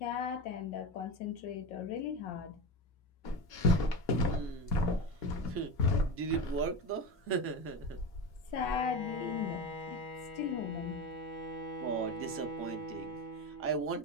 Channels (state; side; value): normal; both; correlation 0.23